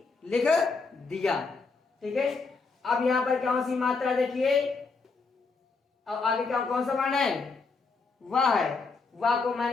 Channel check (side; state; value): right; quieter; 4.3 dB